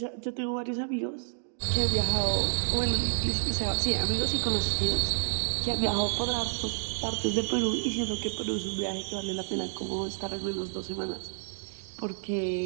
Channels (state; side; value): silent; left; digital silence